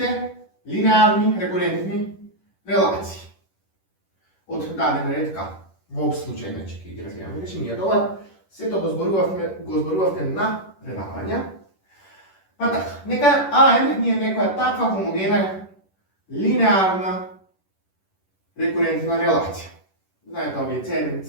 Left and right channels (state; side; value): late; right; 10 ms